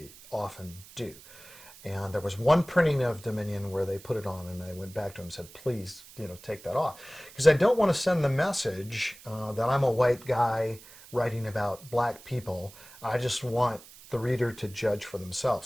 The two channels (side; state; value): right; noise; hiss, 20 dB below the sound